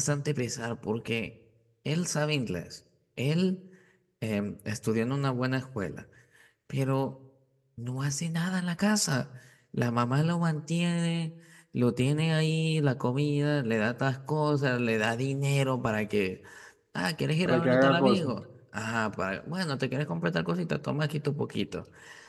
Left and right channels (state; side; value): identical; both; correlation 1.00